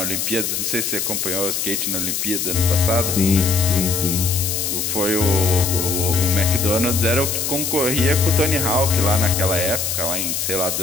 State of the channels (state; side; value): noise; left; hiss, 1 dB below the sound